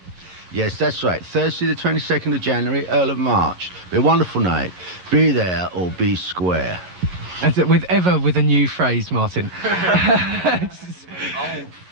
Yes, that's right. Thursday the 22nd of January, Earl of March. Be a wonderful night. Be there or be square. As it with a new phrase, Martin. Old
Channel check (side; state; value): left; late; 11 ms